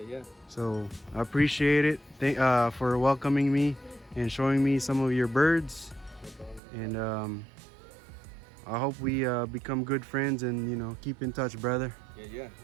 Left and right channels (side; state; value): left; drops out; at 6.6 s